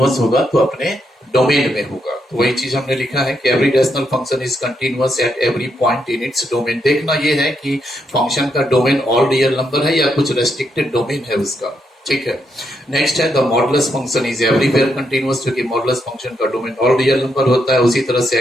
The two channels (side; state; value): both; normal; correlation 0.79